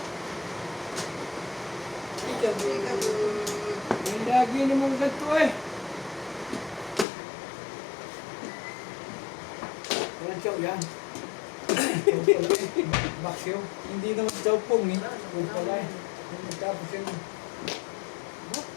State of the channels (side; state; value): right; drops out; at 7.1 s